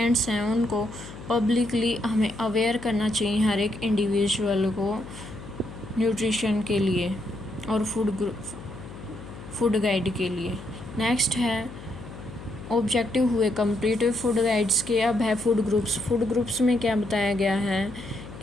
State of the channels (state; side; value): noise; left; hum, 14 dB below the sound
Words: हैं उनको पब्लिकली हमें अवेयर करना चाहिए हर एक इंडिविजुअल को न्यूट्रिशन के लिए और फूड गाइड के लिए। नेक्स्ट है ऑब्जेक्टिव हुए कंप्लीट फूड गाइड्स के। अब है फूड ग्रुप्स। फूड ग्रुप्स में क्या बताया गया है